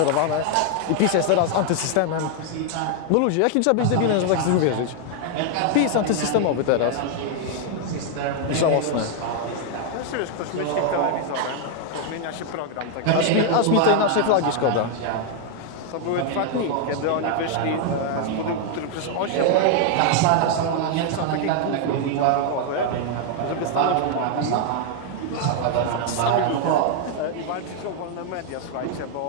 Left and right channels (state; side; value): different; both; correlation 0.00